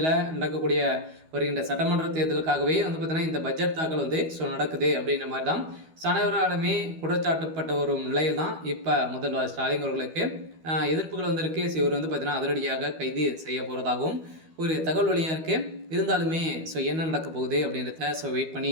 நடக்கக்கூடிய வருகின்ற சட்டமன்ற தேர்தலுக்காகவே பார்த்தீங்கன்னா இந்த பட்ஜெட் தாக்கல் நடக்குது அப்படின்ற மாதிரி தான் அனைவராலுமே குற்றச்சாட்டப்பட்ட ஒரு நிலையில் தான் இப்போ முதல்வர் ஸ்டாலின் அவர்களுக்கு எதிர்ப்புகள் வந்திருக்கு. இவர் பார்த்தீங்கன்னா அதிரடியாக கைது செய்ய போகிறதாகவும் ஒரு தகவல் வழியாக இருக்குது. இருந்தாலுமே என்ன நடக்க போகுது அப்படின்றத வெயிட் பண்ணி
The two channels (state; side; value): late; left; 12 ms